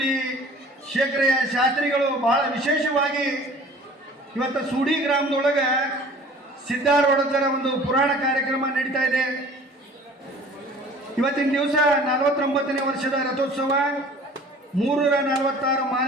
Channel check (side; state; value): both; normal; correlation 0.47